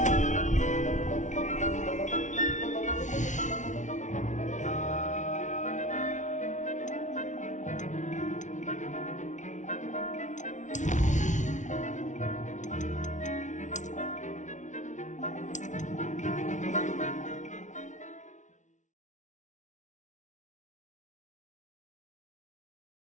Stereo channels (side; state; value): right; late; 0.36 ms